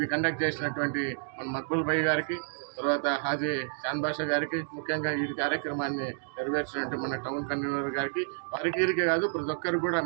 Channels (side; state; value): left; silent; digital silence